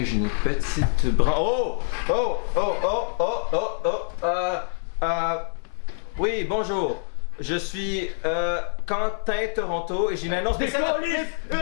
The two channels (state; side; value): silent; right; 61 dB below the other